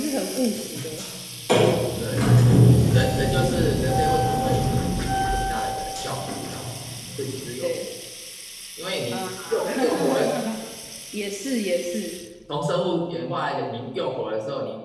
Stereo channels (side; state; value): both; identical; correlation 1.00